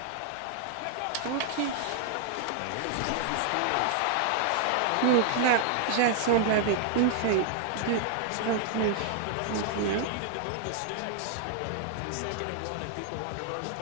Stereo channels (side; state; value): both; different; correlation 0.00